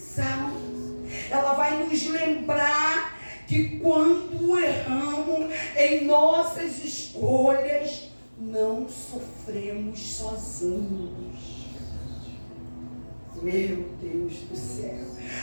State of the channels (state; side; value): inverted; both; correlation -1.00